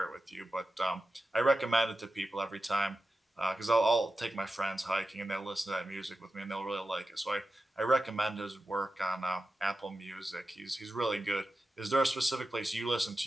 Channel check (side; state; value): both; normal; correlation 0.92